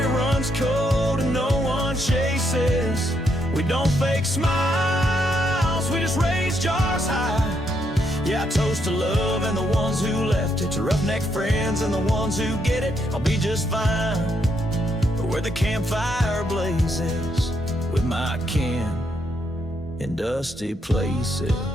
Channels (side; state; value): both; normal; correlation 0.77